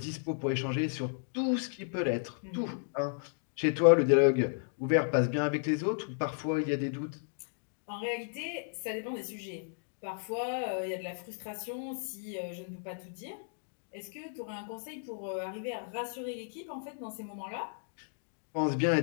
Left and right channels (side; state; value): right; silent; digital silence